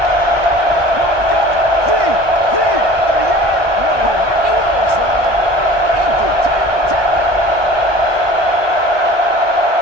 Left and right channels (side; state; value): left; late; 1.2 ms